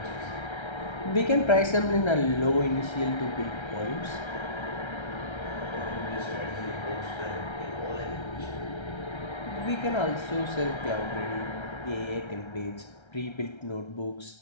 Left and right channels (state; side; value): late; right; 1.3 ms